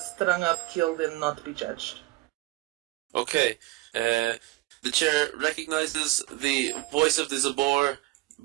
up, killed, and not be judged. Okay, the chair recognizes the voice of the Zabor,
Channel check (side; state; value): left; quieter; 19.7 dB